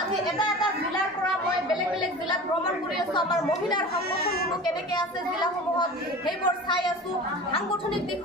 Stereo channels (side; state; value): both; normal; correlation 0.36